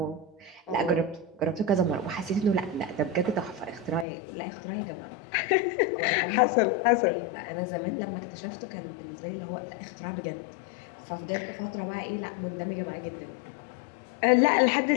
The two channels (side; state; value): right; drops out; at 4.0 s